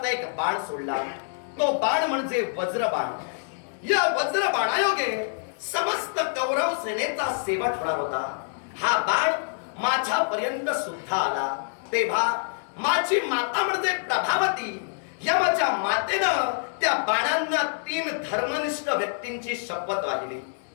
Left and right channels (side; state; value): right; silent; digital silence